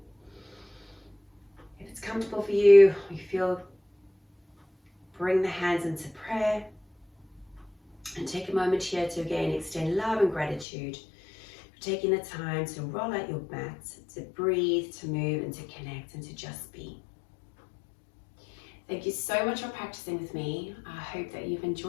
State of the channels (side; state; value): right; drops out; at 10.7 s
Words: If it's comfortable for you, or you feel, bring the hands into prayer. And take a moment here to again extend love and gratitude for taking the time to roll out your mat, to breathe, to move, and to connect, and to just be. Thank you so much for practicing with me. I hope that you've